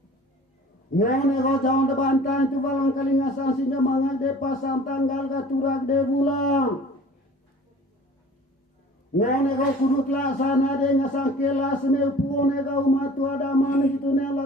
Ngone ko jauh de bantang itu balang kali ngasang singa mangan de pasang tanggal katurak de bulang. Ngone ko kurut laksana de ngasang kelas me puone kau matu ada man itu ne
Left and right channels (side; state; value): both; normal; correlation 0.46